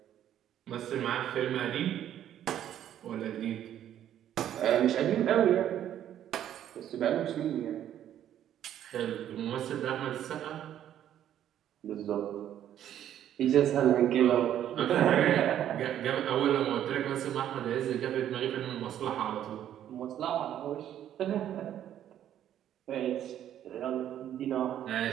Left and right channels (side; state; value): left; quieter; 10.9 dB